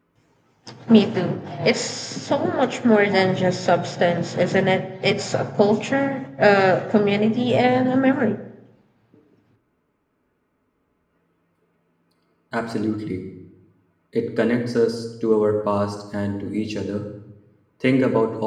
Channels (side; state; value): both; identical; correlation 1.00